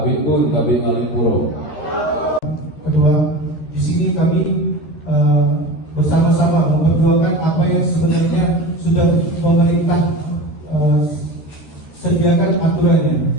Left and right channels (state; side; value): late; right; 13 ms